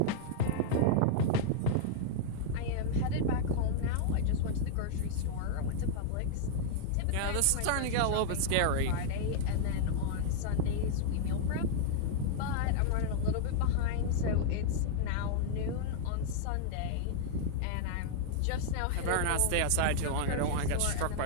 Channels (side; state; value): both; different; correlation -0.01